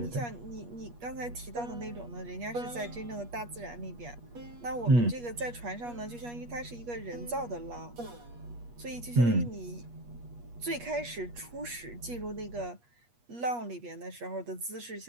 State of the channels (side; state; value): left; late; 8.4 ms